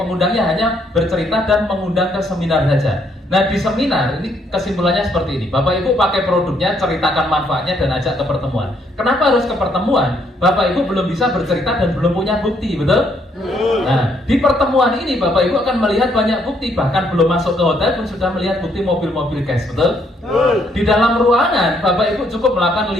hanya bercerita dan mengundang ke seminar saja. Nah di seminar ini kesimpulannya seperti ini. Bapak Ibu pakai produknya, ceritakan manfaatnya dan ajak ke pertemuan. Kenapa harus ke pertemuan? Bapak Ibu belum bisa bercerita dan belum punya bukti, betul? Nah di pertemuan ini Bapak Ibu akan melihat banyak bukti. Bahkan belum masuk ke hotel pun sudah melihat bukti mobil-mobil cash, betul? Di dalam ruangan Bapak Ibu cukup melakukan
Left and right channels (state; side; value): normal; both; correlation 0.70